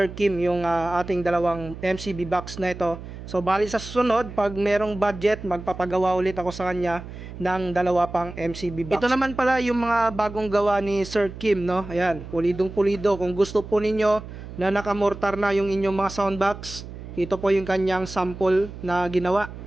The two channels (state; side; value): noise; right; hum, 12 dB below the sound